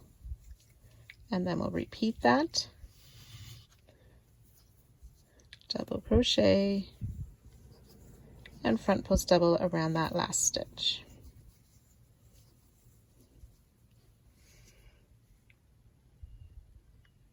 and then we'll repeat that. Double crochet, and front post double around that last stitch.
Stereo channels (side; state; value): both; identical; correlation 1.00